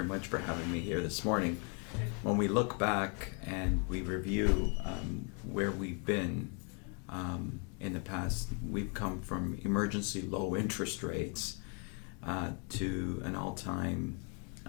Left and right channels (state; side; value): quieter; right; 37.6 dB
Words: much for having me here this morning. When we look back and we review where we've been in the past, we've come from emergency low interest rates to an all-time,